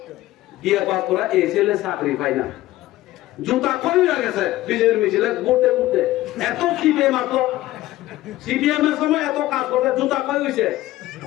বিয়ে পাস করে এই ছেলে চাকরি পায় না, জুতা কই গেছে বিজেপির মিছিলে ঘুরতে ঘুরতে, এত সিপিএম আসলো, সিপিএম এর সময় এত কাজ করতে জুতা কই হয়েছে,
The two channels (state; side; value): quieter; right; 16.1 dB